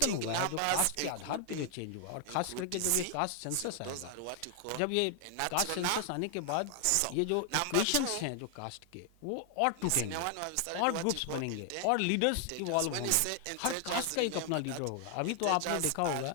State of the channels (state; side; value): different; both; correlation 0.00